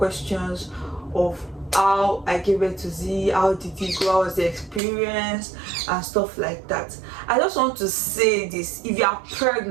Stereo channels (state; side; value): drops out; left; at 4.8 s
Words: of how I gave birth to Z, how did it go, how was the experience and stuff like that. I just want to say this: if you are